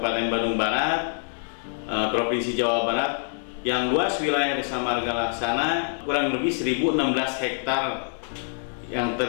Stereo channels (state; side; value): silent; right; digital silence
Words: Bandung Barat, Provinsi Jawa Barat, yang luas wilayah Desa Marga Laksana kurang lebih 1016 hektar, yang